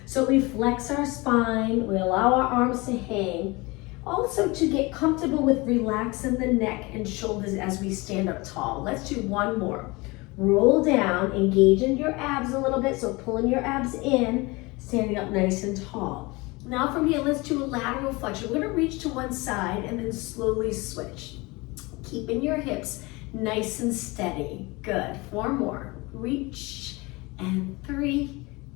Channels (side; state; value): right; quieter; 24.4 dB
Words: So we flex our spine, we allow our arms to hang. Also to get comfortable with relaxing the neck and shoulders as we stand up tall. Let's do one more. Roll down, engaging your abs a little bit, so pulling your abs in, standing up nice and tall. Now from here, let's do a lateral flexion. We're gonna reach to one side and then slowly switch. Keeping your hips nice and steady. Good, 4 more. Reach, and 3,